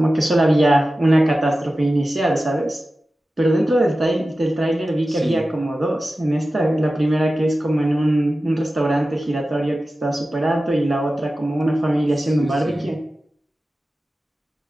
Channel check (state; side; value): normal; both; correlation 0.94